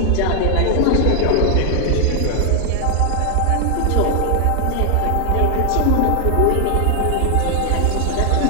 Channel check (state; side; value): different; both; correlation 0.00